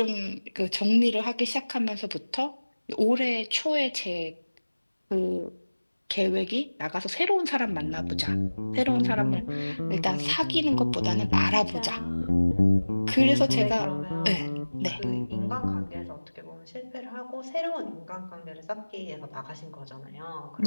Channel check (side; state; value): both; inverted; correlation -1.00